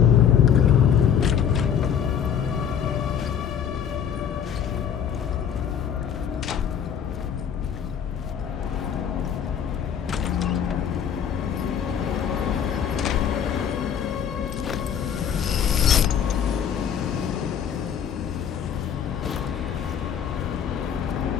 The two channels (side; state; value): right; quieter; 8.3 dB